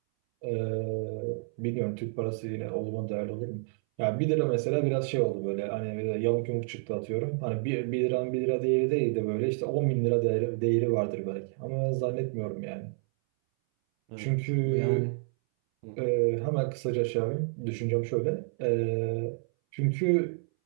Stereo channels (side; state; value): left; silent; 58 dB below the other